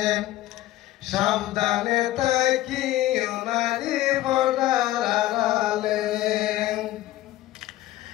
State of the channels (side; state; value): right; quieter; 15.5 dB